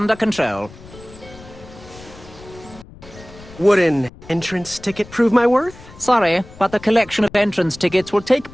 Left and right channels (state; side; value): noise; left; rumble, 20 dB below the sound